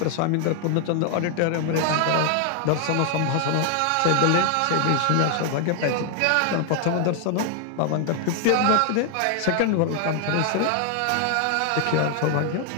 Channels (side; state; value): both; different; correlation 0.00